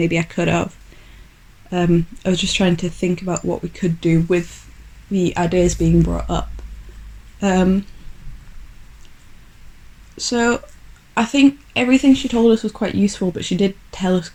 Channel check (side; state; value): both; identical; correlation 1.00